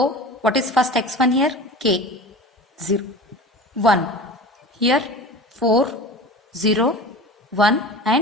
what is first x1 here? K, 0, 1. Here 4, 0, 1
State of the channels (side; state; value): both; normal; correlation 0.35